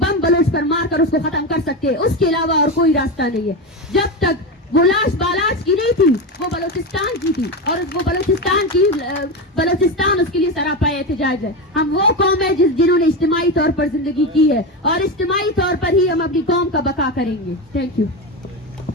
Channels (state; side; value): normal; both; correlation 0.17